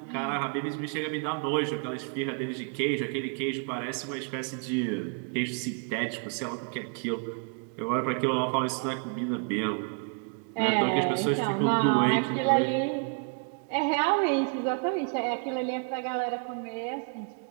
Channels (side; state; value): left; quieter; 38.7 dB